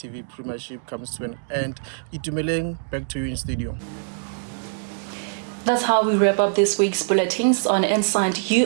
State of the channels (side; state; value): left; silent; digital silence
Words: Premiership comes to an end. Itumeleng, back to you in studio. That's how we wrap up this week's bulletins on Inside